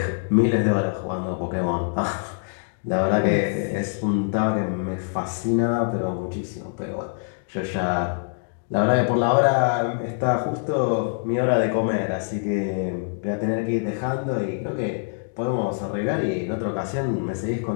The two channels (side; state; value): right; silent; digital silence